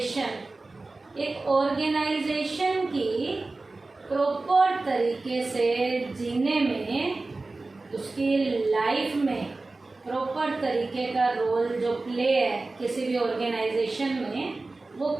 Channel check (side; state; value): left; quieter; 3.4 dB